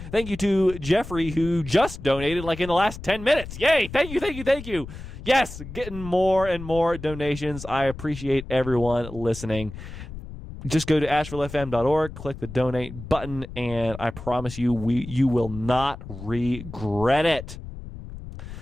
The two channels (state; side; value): noise; left; rumble, 12 dB below the sound